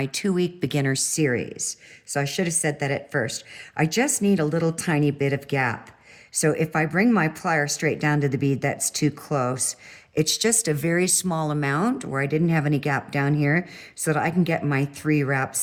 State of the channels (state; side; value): identical; both; correlation 1.00